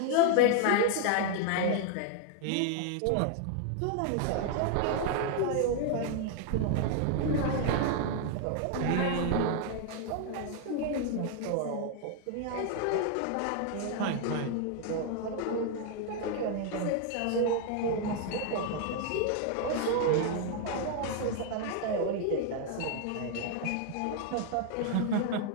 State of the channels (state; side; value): different; both; correlation 0.00